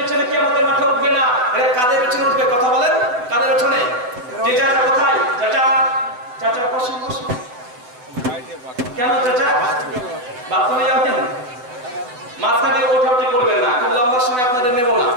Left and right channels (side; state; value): left; late; 8.0 ms